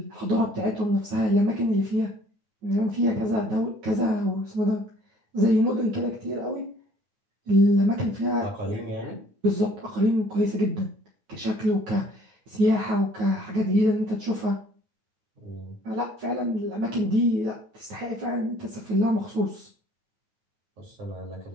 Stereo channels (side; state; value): left; late; 9.4 ms